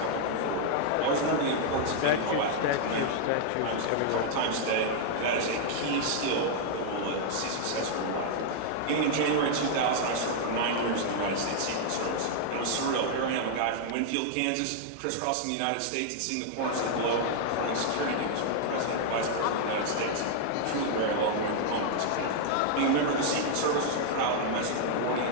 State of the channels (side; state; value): both; different; correlation 0.00